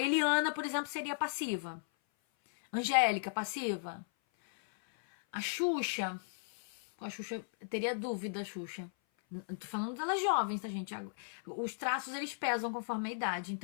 Eliana, por exemplo, seria passiva. Angélica, passiva. A Xuxa teria dúvida, Xuxa. Tô falando delas jovens, tá, gente? Os traços, eles pesam conforme a idade,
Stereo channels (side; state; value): right; silent; 54 dB below the other